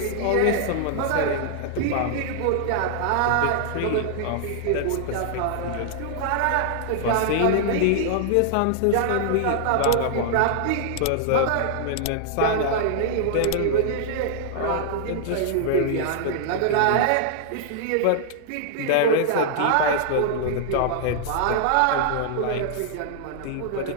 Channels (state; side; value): different; both; correlation -0.01